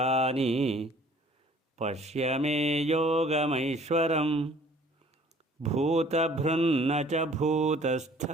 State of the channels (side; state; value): both; normal; correlation 0.54